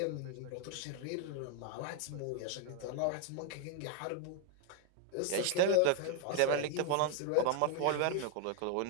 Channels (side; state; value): both; different; correlation 0.01